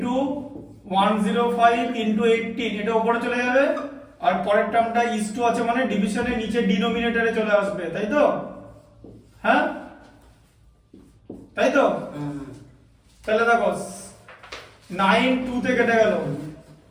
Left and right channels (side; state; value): both; identical; correlation 1.00